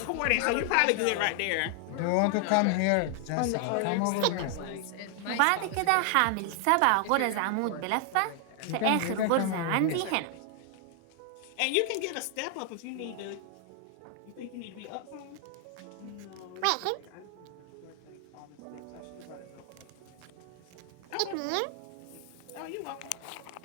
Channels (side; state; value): both; different; correlation 0.00